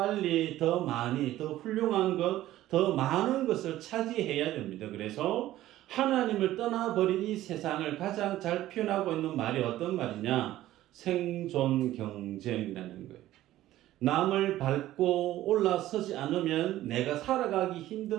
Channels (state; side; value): quieter; left; 14.6 dB